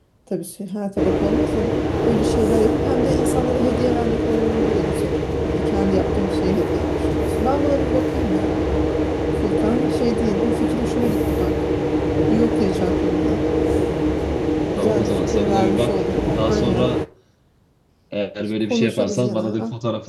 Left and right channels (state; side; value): identical; both; correlation 1.00